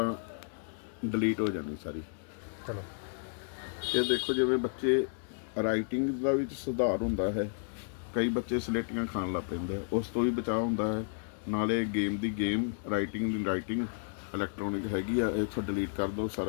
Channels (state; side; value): silent; right; 56 dB below the other